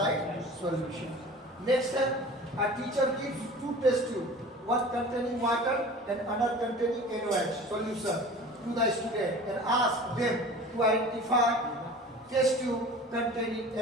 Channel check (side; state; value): both; normal; correlation 0.40